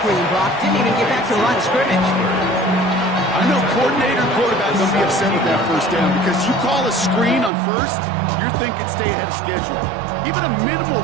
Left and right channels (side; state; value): left; drops out; at 7.5 s